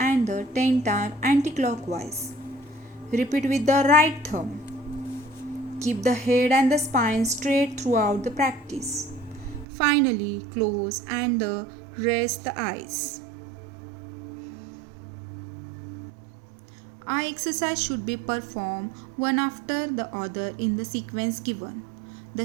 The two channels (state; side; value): drops out; left; at 9.7 s